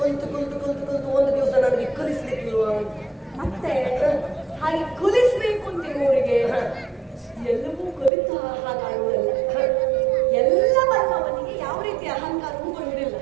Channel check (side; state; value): left; drops out; at 8.1 s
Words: ಕಲಿತು ಒಂದು ದಿವಸ ನನಗೆ ಕಲಿಸ್ಲಿಕ್ಕಿಲ್ವಾ? ಮತ್ತೆ ಹಾಗೆ ಕಲಿಸ್ಬೇಕು ಅಂತಿರುವವರಿಗೆ ಎಲ್ಲವೂ ಕಲಿತ ಹಾಗಾಡುವುದಲ್ಲ. ಎಲ್ಲವನ್ನು ಅವನಿಗೆ ಯಾವ ರೀತಿ ಅಹಂಕಾರವೂ ಬರುವುದಿಲ್ಲ.